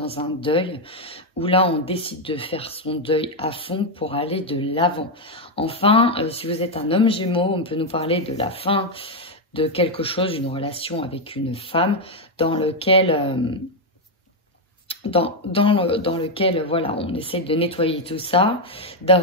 un deuil où là on décide de faire son deuil à fond pour aller de l'avant. Enfin, si vous êtes un homme Gémeaux, on peut nous parler de la fin de quelque chose, une relation avec une femme dans lequel voilà, on essaie de nettoyer tout ça,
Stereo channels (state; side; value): normal; both; correlation 0.03